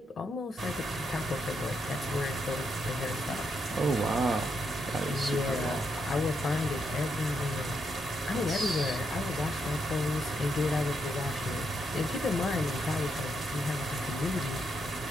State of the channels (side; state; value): both; normal; correlation 0.80